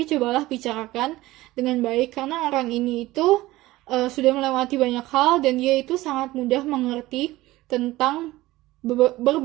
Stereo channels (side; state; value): left; quieter; 17.9 dB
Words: cobalah bicarakan dengan baik, karena orang ini itu sudah melewati banyak hal, dan dia itu sangat mudah mengerti tentang